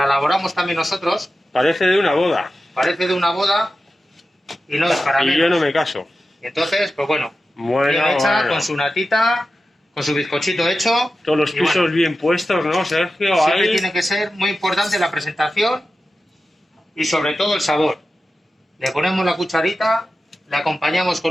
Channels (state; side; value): normal; both; correlation 0.93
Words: elaboramos también nosotros. Parece de una boda. Parece de una boda y no es para mí. Y yo no me caso. Entonces, pues bueno, Bueno, bien hecha, bueno. con su natita, con su bizcochito hecho. Todos los Y pisos bueno, bien puestos, ¿no, Sergio? siempre Ahí. tiene que ser muy importante la presentación y sobre todo el sabor. Le ponemos la cucharita, le acompañamos